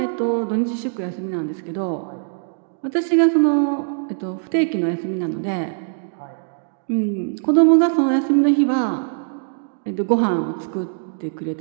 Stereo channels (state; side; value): silent; left; digital silence